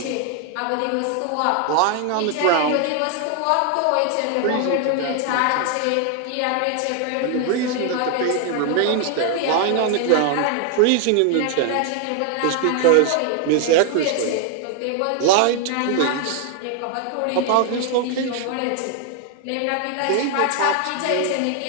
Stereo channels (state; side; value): different; both; correlation 0.00